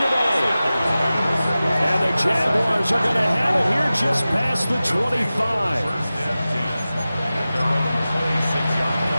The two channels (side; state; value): both; inverted; correlation -0.96